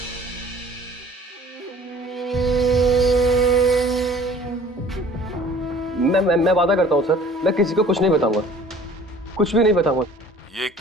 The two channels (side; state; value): both; normal; correlation 0.50